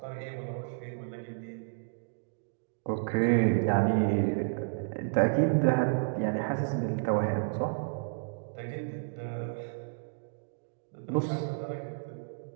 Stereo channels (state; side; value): silent; left; digital silence